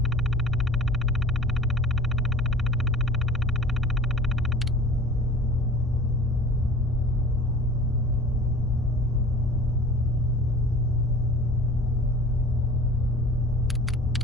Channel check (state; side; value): normal; both; correlation 0.43